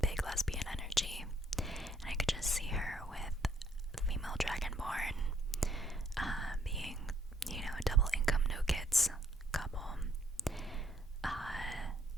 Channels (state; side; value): normal; both; correlation 0.68